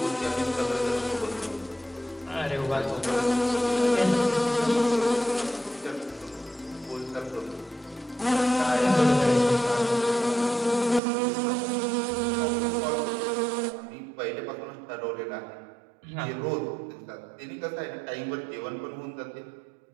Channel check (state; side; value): drops out; left; at 11.0 s